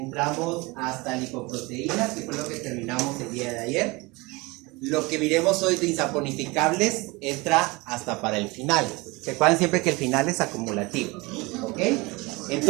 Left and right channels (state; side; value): quieter; left; 24.3 dB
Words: hasta lipoproteínas, que fue lo que terminamos el día de ayer. Lo que miremos hoy de insaponificables entra hasta para el final. Recuerden siempre que el final es acumulativo, ¿ok?